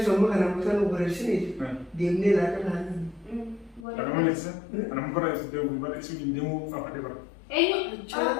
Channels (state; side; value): drops out; right; at 3.9 s